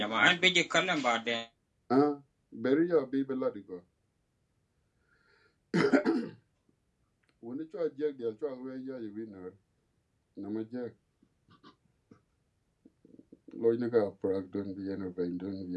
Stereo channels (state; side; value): identical; both; correlation 1.00